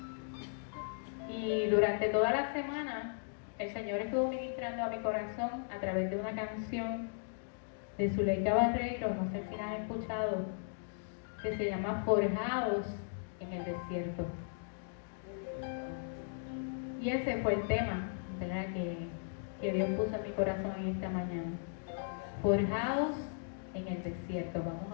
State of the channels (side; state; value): right; silent; digital silence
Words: Y durante toda la semana el Señor estuvo ministrando a mi corazón a través de una canción de Zuleika Barreiro, no sé si la han escuchado, que se llama Forjados en el Desierto. Y ese fue el tema, ¿verdad?, que Dios puso en mi corazón en esta mañana. Forjados en el desierto.